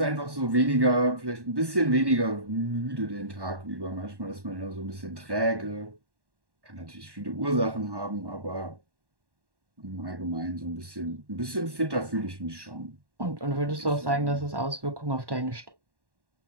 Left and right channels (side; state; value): left; late; 1.1 ms